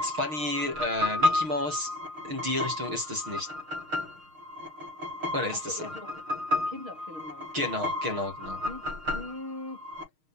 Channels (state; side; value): late; left; 6.5 ms